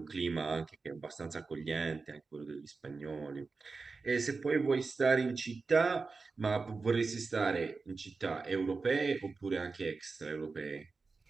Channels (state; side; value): quieter; left; 4.3 dB